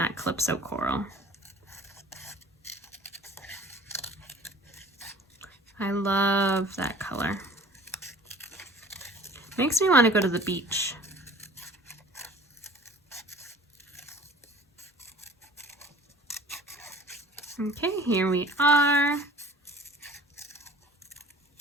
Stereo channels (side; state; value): both; normal; correlation 0.47